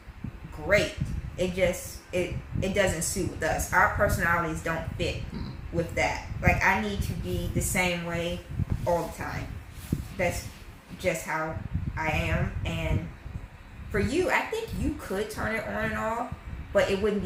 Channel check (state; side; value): identical; both; correlation 1.00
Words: great. It doesn't suit with us. Our personalities don't fit with that. Like, I need to be the same way all the time. That's just how I am, and For you, I think you could turn it on and off, but it wouldn't